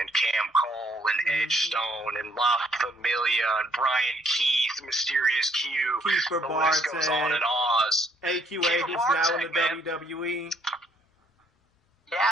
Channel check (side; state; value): both; normal; correlation 0.67